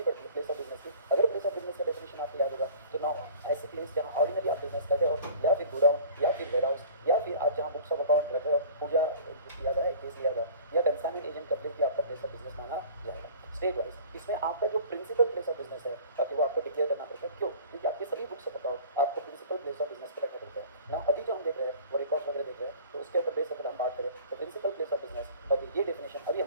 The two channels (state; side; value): inverted; both; correlation -0.45